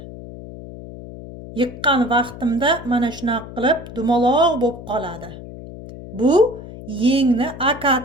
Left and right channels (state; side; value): noise; left; hum, 14 dB below the sound